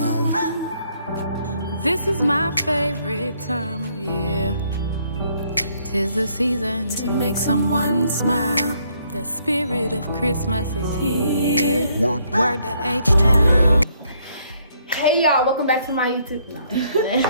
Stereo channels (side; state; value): both; inverted; correlation -0.69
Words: This is my favorite time of year. 'Tis the season to make someone smile. The spirit of Christmas is here. Word to H-Town. Hey y'all, welcome back to my YouTube.